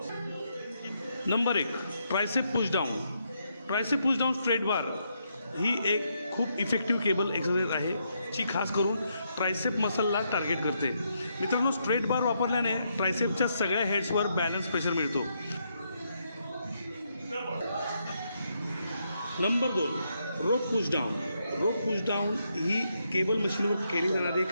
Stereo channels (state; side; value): inverted; both; correlation -0.78